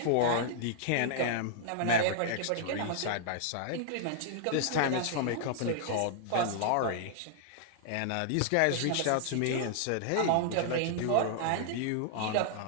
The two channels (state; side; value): different; both; correlation -0.01